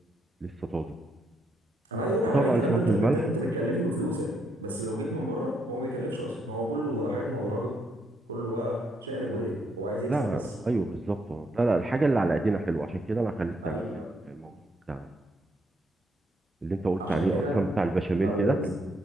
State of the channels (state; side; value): normal; both; correlation 0.75